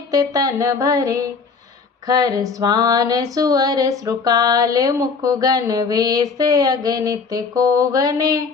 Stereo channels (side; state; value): right; quieter; 4.9 dB